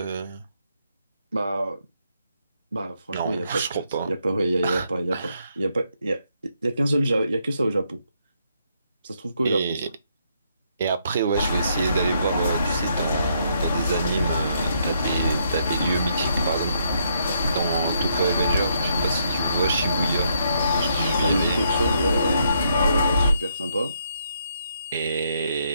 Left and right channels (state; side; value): inverted; both; correlation -0.74